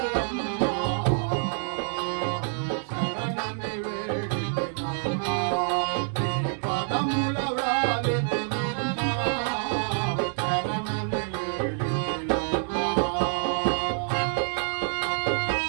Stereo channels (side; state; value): left; silent; digital silence